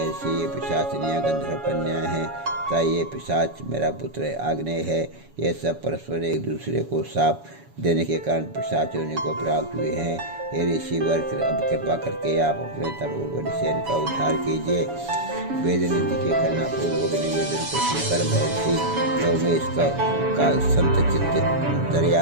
ये पिशाचिनियाँ गंधर्व कन्याएं हैं तथा ये पिशाच मेरा पुत्र आग्नेय है। ये सब परस्पर एक दूसरे को साप देने के कारण पिशाच योनि को प्राप्त हुए हैं। हे ऋषिवर, अब कृपा करके आप अपने तपोबल से इनका उद्धार कीजिए। वेदनिधि के करना पूर्वक निवेदन को सुनकर महर्षि लोमश का संत चित्त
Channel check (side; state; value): left; late; 7.1 ms